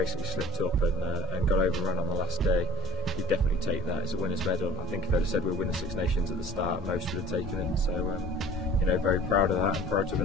slipped up and got overrun on the last day. You definitely take that as a winner's medal. I think if they'd have said we'll win the Six Nations at the start, most would have taken it. So, you know, very proud of that and proud to have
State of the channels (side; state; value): both; normal; correlation 0.45